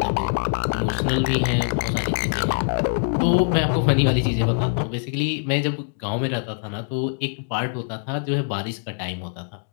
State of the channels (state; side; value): silent; right; digital silence